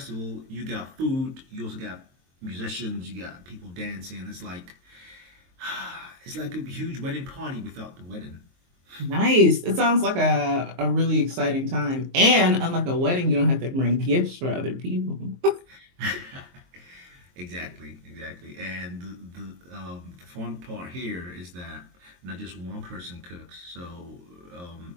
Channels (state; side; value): late; left; 23 ms